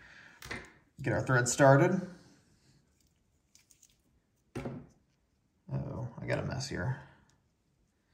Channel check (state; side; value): identical; both; correlation 1.00